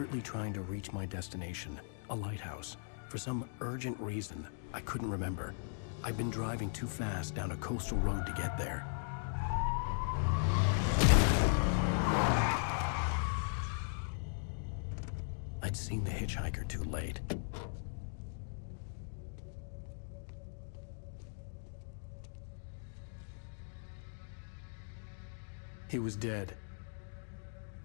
trying to reach my destination, a lighthouse. For some urgent reason, I couldn't remember. I'd been driving too fast down a coastal road to get there. I'd seen the hitchhiker too late. He was dead.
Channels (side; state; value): right; silent; digital silence